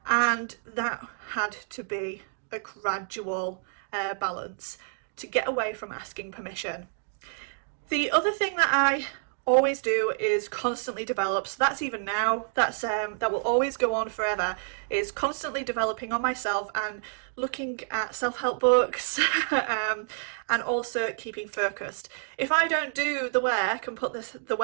and that had to be a gradual balance to get away from asking permission. The other thing that I always do is constantly develop, so that's even now, that will always go on forever, is constantly developing on myself and looking at self-help books and also keeping focused. If I don't do the work and put the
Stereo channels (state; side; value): silent; left; digital silence